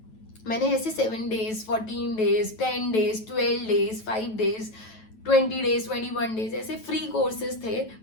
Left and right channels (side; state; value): right; late; 9.2 ms